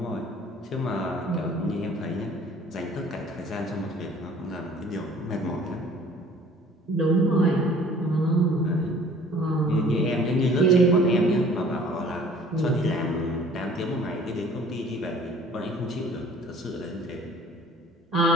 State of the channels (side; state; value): both; normal; correlation 0.51